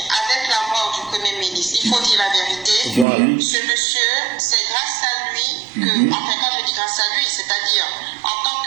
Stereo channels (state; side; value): drops out; left; at 3.1 s